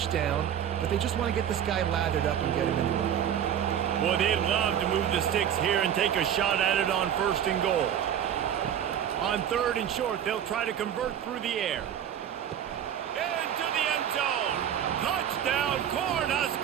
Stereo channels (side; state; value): left; quieter; 9.5 dB